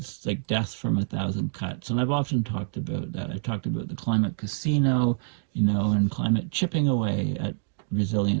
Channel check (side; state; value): left; silent; digital silence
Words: like death from 1,000 cuts. And I've often talked about that. I've talked about the climate casino, and climate chipping away at